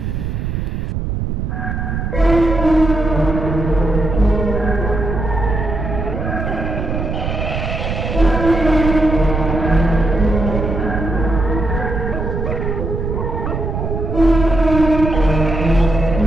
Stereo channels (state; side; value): noise; right; rumble, 3 dB below the sound